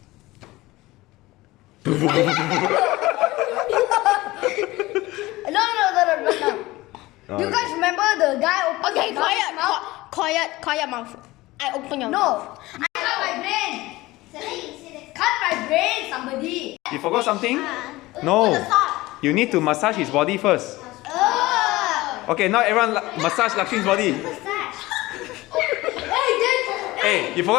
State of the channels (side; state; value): right; quieter; 19.3 dB